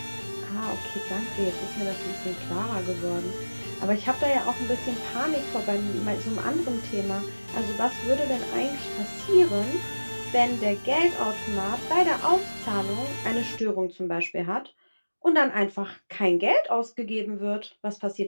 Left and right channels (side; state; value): both; inverted; correlation -1.00